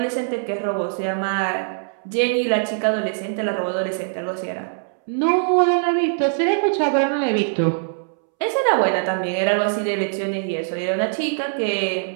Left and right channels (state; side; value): silent; left; 64 dB below the other